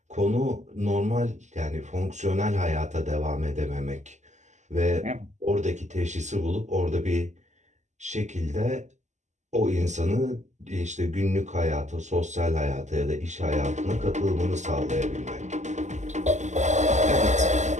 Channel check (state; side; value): late; left; 0.34 ms